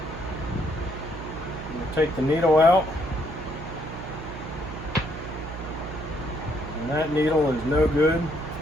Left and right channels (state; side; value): noise; right; hum, 10 dB below the sound